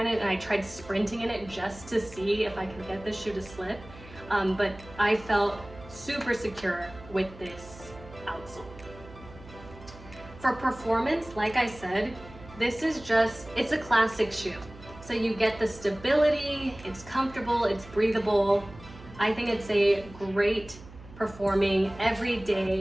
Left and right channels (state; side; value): noise; right; hum, 18 dB below the sound